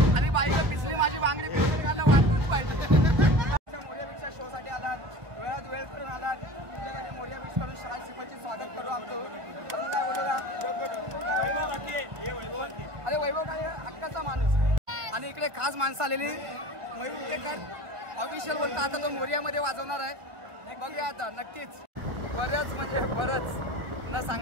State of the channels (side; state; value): left; late; 1.6 ms